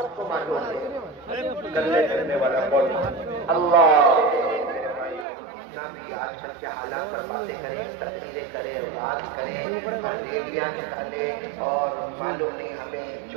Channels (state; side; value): drops out; left; at 5.2 s